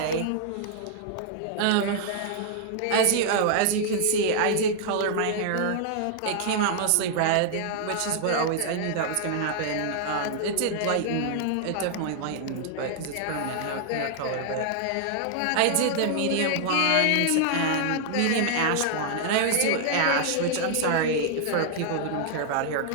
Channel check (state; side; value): different; both; correlation 0.00